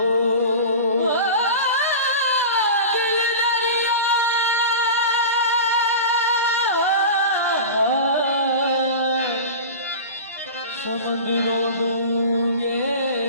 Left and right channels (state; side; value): inverted; both; correlation -0.31